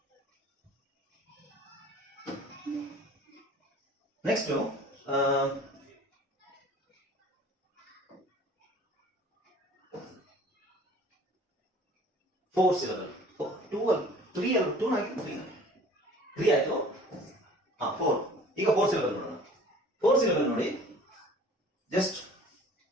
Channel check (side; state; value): both; normal; correlation 0.48